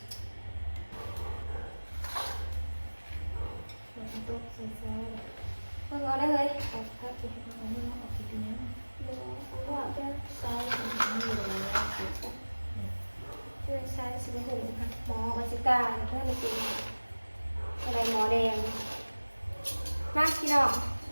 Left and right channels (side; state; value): both; inverted; correlation -1.00